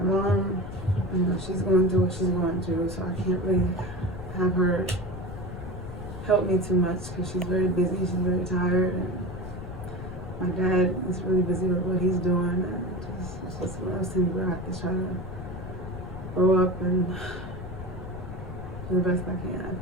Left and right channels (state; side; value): noise; left; rumble, 10 dB below the sound